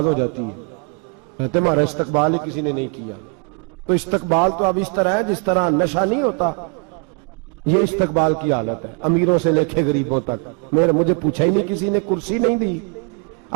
हो जाती है। कहते हमारा इस्तकबाल ही किसी ने नहीं किया। तो इस्तकबाल तो अब इस तरह है जिस तरह नशा नहीं होता, ये इस्तकबाल की हालत है, अमीरों से लेके गरीबों तक। मुझे पूछा ही नहीं, किसी ने कुर्सी नहीं दी,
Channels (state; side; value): quieter; left; 36.2 dB